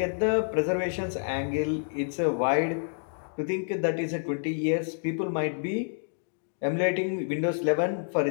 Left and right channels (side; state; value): right; silent; digital silence